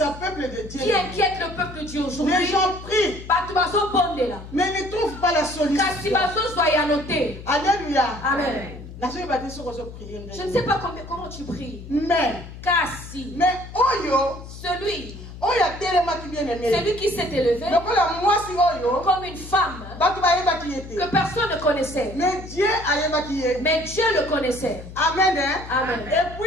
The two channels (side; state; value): left; noise; hum, 13 dB below the sound